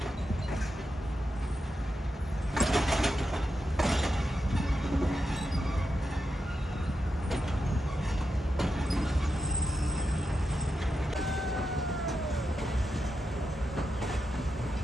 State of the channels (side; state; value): both; normal; correlation 0.88